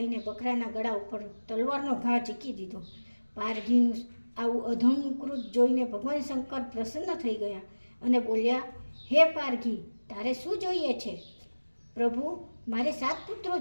બકરાના ગળા ઉપર તલવારનો ઘા ઝીકી દીધો. પારઘીનું આવું અધમ કૃત જોઈને ભગવાન શંકર પ્રસન્ન થઈ ગયા અને બોલ્યા, હે પારઘી, તારે શું જોઈએ છે? પ્રભુ, મારે 7 પુત્રો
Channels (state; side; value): inverted; both; correlation -1.00